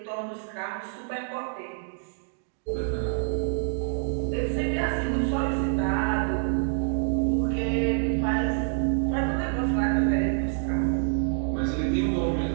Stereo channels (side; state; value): left; silent; digital silence